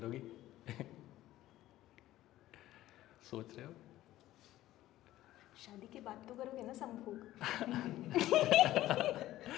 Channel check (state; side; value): quieter; right; 14.9 dB